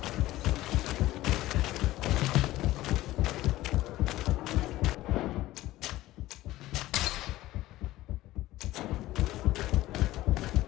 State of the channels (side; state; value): right; quieter; 16.4 dB